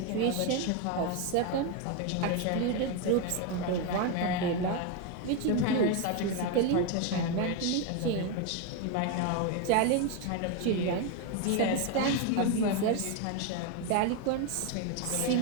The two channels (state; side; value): different; both; correlation 0.02